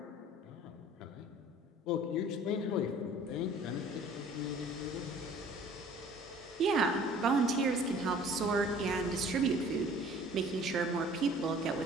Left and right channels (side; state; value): both; normal; correlation 0.50